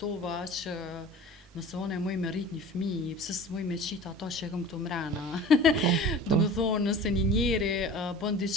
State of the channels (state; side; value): normal; both; correlation 0.40